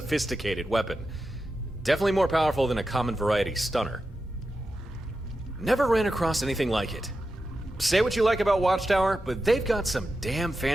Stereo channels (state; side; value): normal; both; correlation 0.90